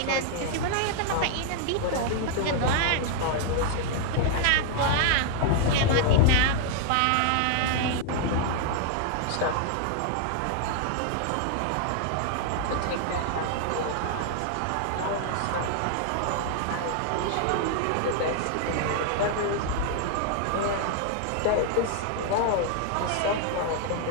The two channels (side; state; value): both; different; correlation 0.00